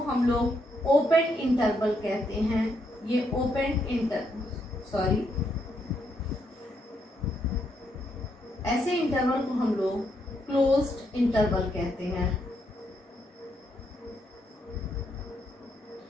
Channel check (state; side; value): normal; both; correlation 0.77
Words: हम लोग ओपन इंटरवल कहते हैं। ये ऐसे इंटरवल को हम लोग क्लोज्ड इंटरवल कहते हैं।